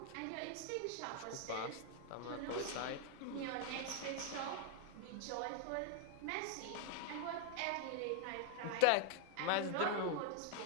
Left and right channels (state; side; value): different; both; correlation 0.00